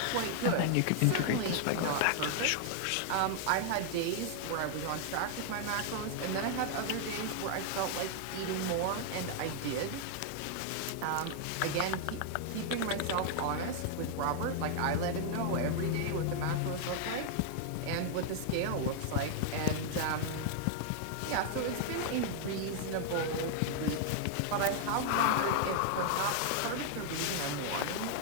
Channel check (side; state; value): both; different; correlation 0.00